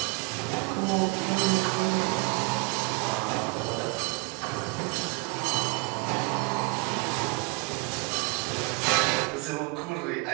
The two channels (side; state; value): left; quieter; 29.3 dB